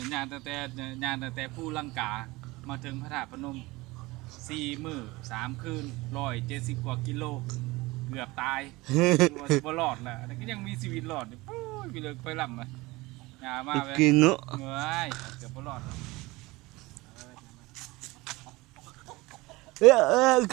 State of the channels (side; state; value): left; quieter; 21.6 dB